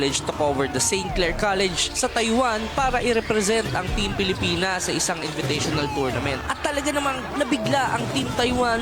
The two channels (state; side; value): identical; both; correlation 1.00